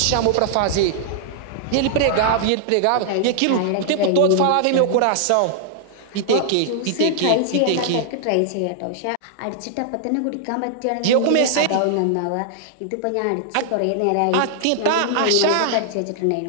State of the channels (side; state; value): both; different; correlation -0.01